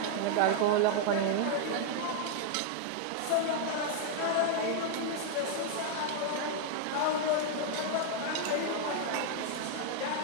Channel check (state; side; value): different; both; correlation 0.00